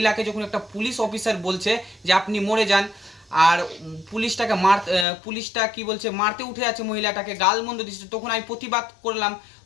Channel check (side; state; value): right; drops out; at 5.1 s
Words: যখন একটা পুলিশ অফিসার বলছে যে আপনি মরে যান, আর পুলিশটা কি বলছে, মারতে উঠে আছে মহিলাটাকে, গালমন্দ দিচ্ছে, তখন আমি প্রতিবাদ করলাম।